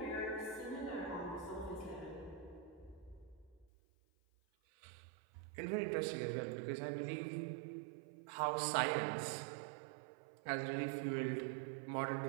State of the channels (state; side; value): drops out; left; at 3.7 s